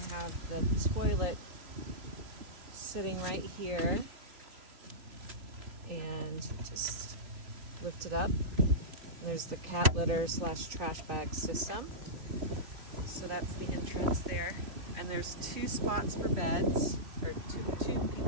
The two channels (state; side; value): late; left; 3.0 ms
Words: have the toilet sitting right here. And just lift it up. And there's the cat litter / trash bag system. So that's the entrance there. And there's 2 spots for beds, or two